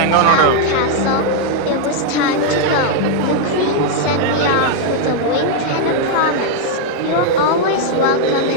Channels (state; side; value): different; both; correlation 0.00